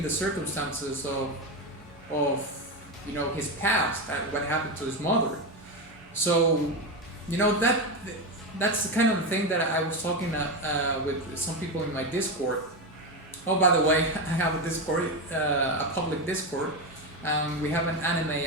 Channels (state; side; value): normal; both; correlation 0.14